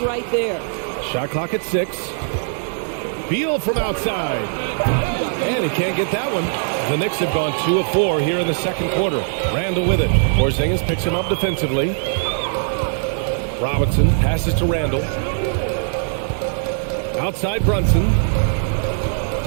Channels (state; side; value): silent; left; 56 dB below the other